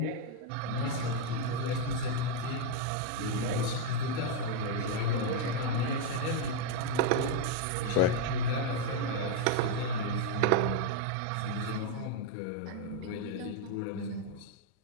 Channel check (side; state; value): both; different; correlation 0.01